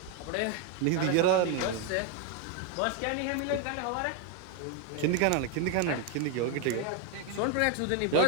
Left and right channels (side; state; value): both; different; correlation 0.01